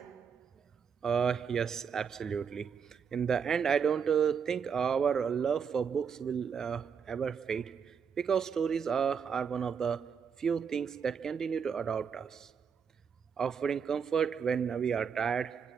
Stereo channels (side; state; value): left; quieter; 6.8 dB